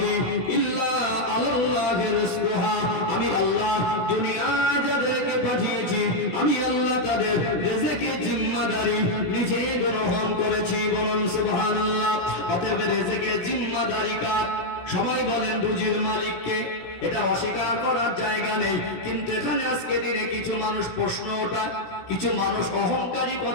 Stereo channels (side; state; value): right; late; 16 ms